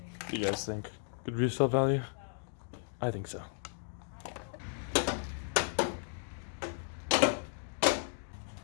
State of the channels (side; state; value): right; silent; digital silence